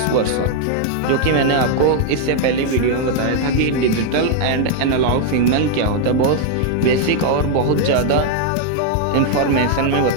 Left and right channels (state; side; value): different; both; correlation 0.00